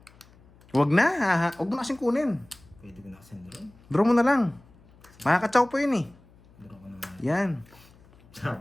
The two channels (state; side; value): noise; left; hum, 27 dB below the sound